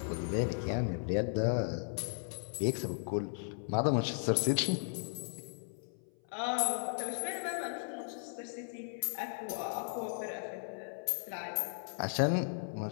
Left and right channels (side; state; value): right; silent; 54 dB below the other